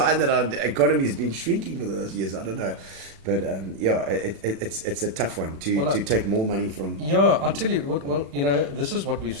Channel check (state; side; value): late; left; 36 ms